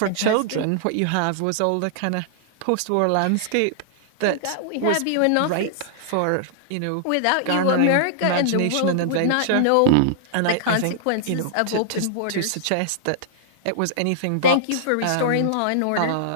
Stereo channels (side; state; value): both; different; correlation -0.01